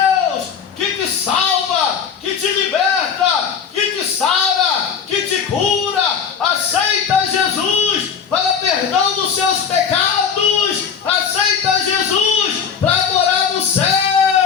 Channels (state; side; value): quieter; right; 6.9 dB